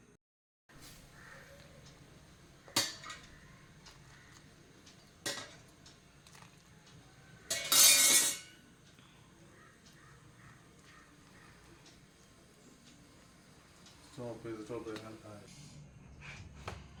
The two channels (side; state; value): both; identical; correlation 1.00